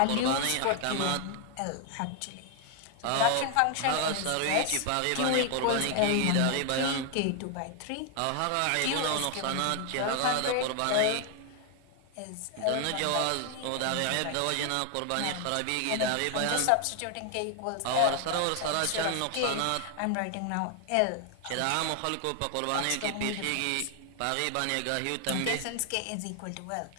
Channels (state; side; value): different; both; correlation 0.00